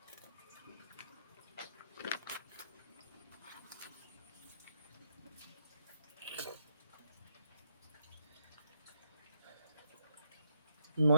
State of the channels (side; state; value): both; inverted; correlation -0.77